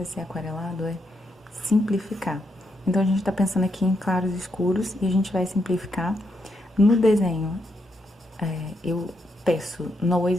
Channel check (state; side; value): normal; both; correlation 0.80